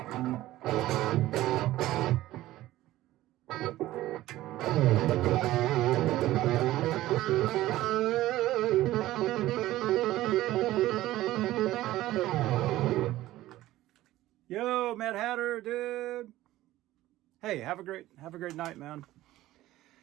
Yo, Mad Hatter, dude. Hey, have a great night, man.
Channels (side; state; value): left; quieter; 15.7 dB